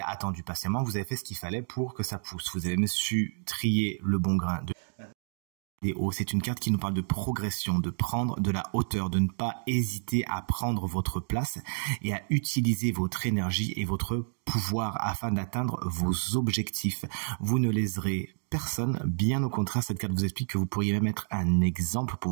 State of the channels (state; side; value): silent; left; 58 dB below the other